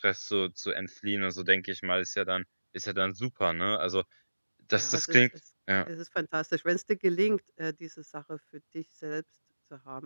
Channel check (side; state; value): both; inverted; correlation -1.00